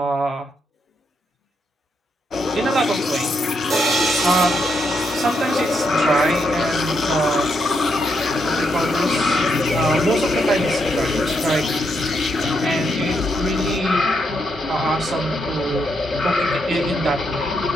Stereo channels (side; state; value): both; normal; correlation 0.79